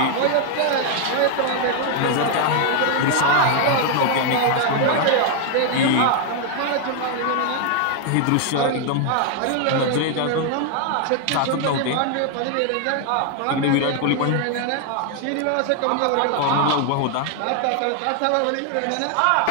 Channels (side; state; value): both; different; correlation 0.00